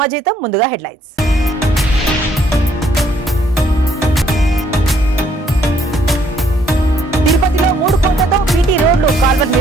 ముందుగా హెడ్లైన్స్ తిరుపతిలో 3 కోట్లతో బీటీ రోడ్లు కాల్వర్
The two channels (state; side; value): normal; both; correlation 0.67